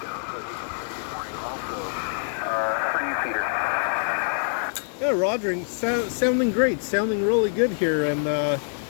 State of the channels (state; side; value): silent; right; digital silence